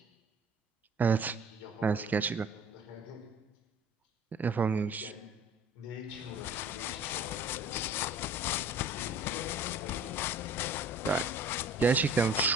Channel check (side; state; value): both; normal; correlation 0.47